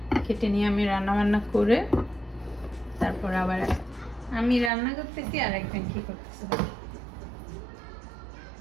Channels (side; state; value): left; drops out; at 4.7 s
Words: কেটে নিয়ে আমি রান্না বান্না করে তারপর আবার আমি রান্না করতেছি আর একজন কি করতেছে।